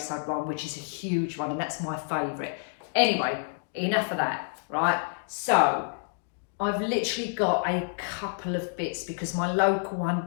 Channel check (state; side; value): silent; right; digital silence